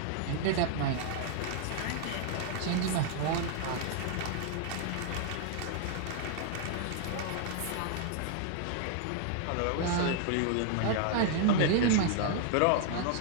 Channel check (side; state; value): both; different; correlation 0.00